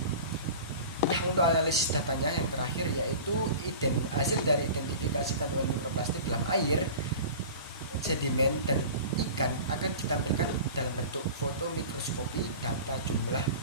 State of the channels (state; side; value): inverted; both; correlation -0.37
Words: Nah, untuk analisis datanya yang terakhir yaitu hasil dari identifikasi kandungan mikroplastik dalam air, sedimen, dan ikan akan ditampilkan dalam bentuk foto mikroskopi. Data jumlah